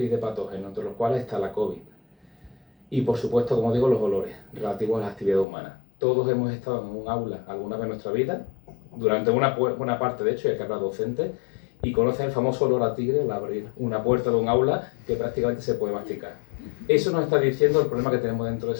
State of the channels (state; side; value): drops out; right; at 5.5 s